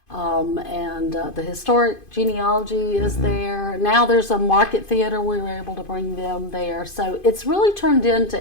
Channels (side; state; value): right; late; 2.5 ms